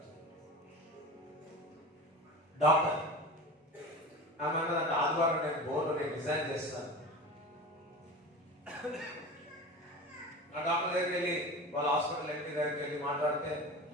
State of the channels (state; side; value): normal; both; correlation 0.31